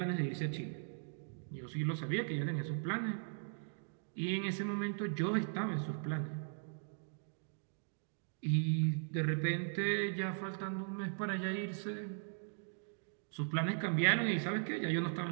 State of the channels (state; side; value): silent; left; digital silence